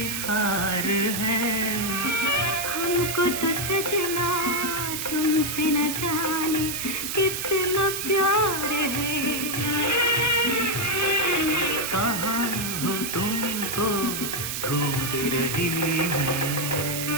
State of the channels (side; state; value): right; noise; hiss, 4 dB below the sound